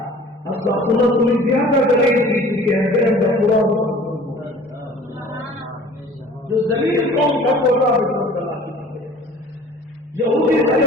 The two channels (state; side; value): normal; both; correlation 0.48